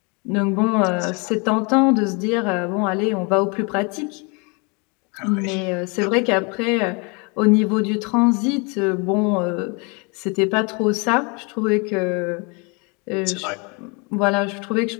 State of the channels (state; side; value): quieter; right; 31.9 dB